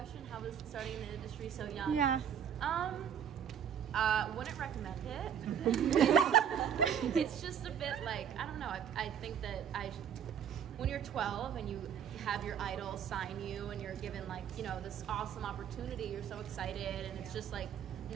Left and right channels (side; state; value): left; quieter; 8.5 dB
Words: How was starting in the industry so young? Yeah. Wouldn't recommend it. It's just a bit like, I don't know. I think that when you're 12 and you have your idol sign you and you're given like, you know, this awesome opportunity, you're so excited and it's just like